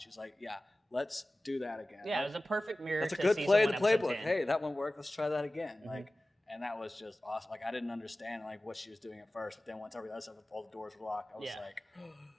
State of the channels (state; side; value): normal; both; correlation 0.97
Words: like, yeah, let's do that again. Yeah, it was a perfect mirror. That's a good play in the playbook. Hey, that one worked. Let's try that again. Mm-hmm. Like, and that was just awesome. Like, I didn't understand like what she was doing at first, but then once all the doors were locked, I was like,